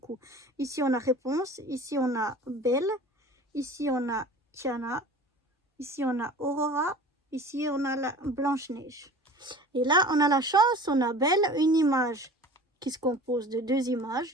Ici, on a Réponse. Ici, on a Belle. Ici, on a Tiana. Ici, on a Aurora. Ici, on a la Blanche-Neige. Et là, on a la chance, on a Belle, une image qui se compose de 2 images,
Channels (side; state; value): both; normal; correlation 0.41